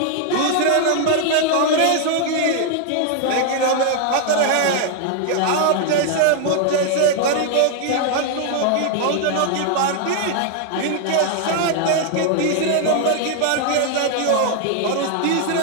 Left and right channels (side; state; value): both; different; correlation 0.00